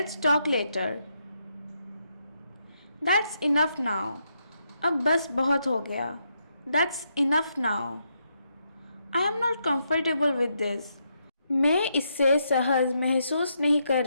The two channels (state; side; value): inverted; both; correlation -0.79